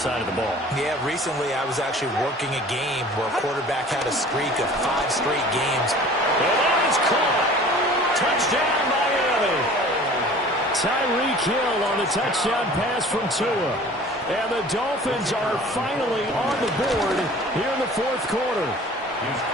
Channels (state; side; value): normal; both; correlation 0.46